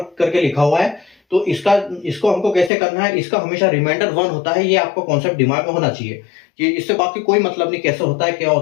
करके लिखा हुआ है तो इसको हमको कैसे करना है, इसका हमेशा रिमाइंडर 1 होता है, ये आपको कॉन्सेप्ट दिमाग में होना चाहिए कि इससे बाकी कोई मतलब नहीं, कैसे होता है क्या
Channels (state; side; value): drops out; right; at 2.7 s